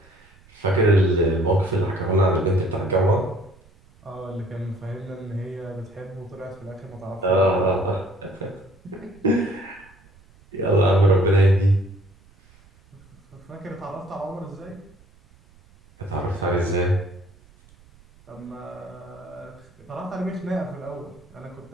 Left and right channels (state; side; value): noise; right; rumble, 27 dB below the sound